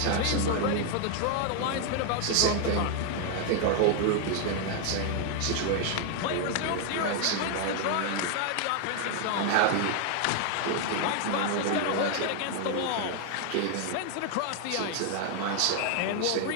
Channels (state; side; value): different; both; correlation 0.00